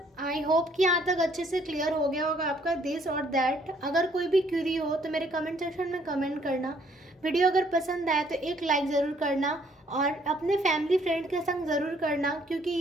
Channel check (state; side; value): normal; both; correlation 0.65